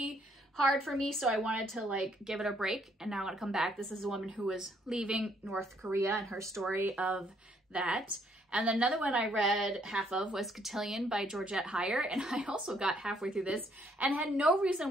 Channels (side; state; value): both; normal; correlation 0.68